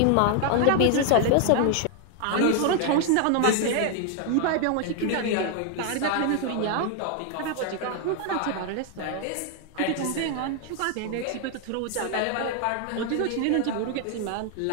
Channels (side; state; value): both; different; correlation 0.00